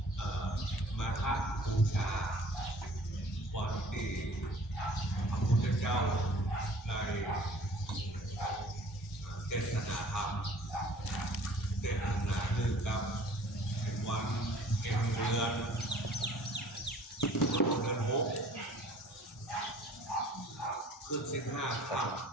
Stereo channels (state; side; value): normal; both; correlation 0.51